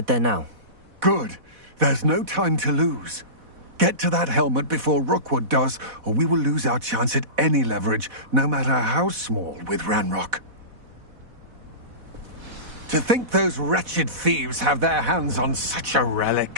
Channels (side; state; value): left; late; 4.1 ms